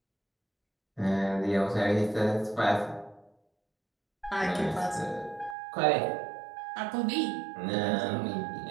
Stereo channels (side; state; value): left; drops out; at 5.6 s